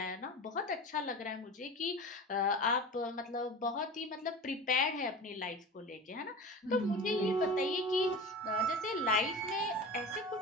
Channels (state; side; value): normal; both; correlation 0.32